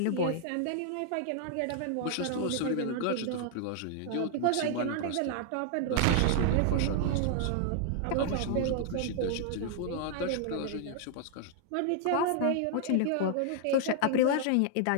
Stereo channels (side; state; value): both; different; correlation 0.00